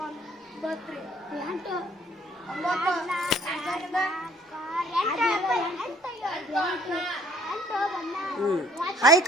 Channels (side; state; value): both; normal; correlation 0.60